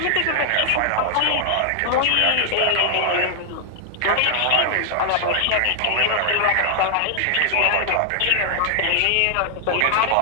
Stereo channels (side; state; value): both; different; correlation 0.00